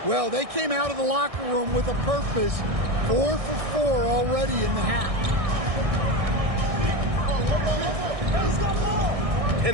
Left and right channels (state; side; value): late; left; 1.6 ms